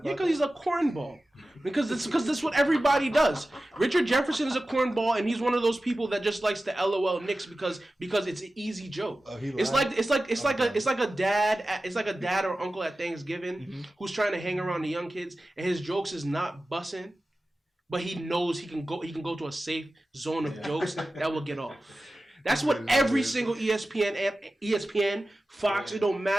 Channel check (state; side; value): normal; both; correlation 0.95